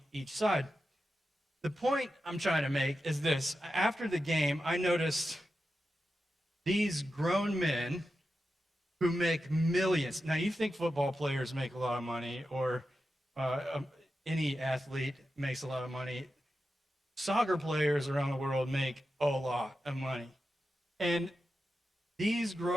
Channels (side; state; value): both; normal; correlation 0.91